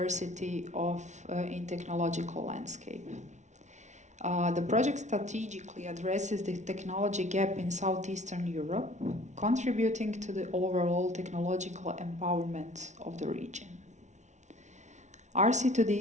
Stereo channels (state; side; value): late; left; 0.34 ms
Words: in technological landscape. The project strategically addresses the technology gap in Southeastern Europe, contributing to the overall technological empowerment of the region.